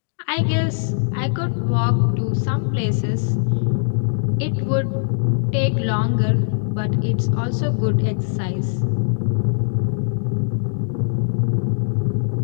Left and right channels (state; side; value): silent; right; digital silence